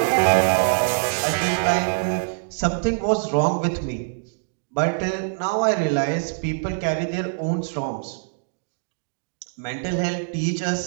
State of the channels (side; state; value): left; silent; digital silence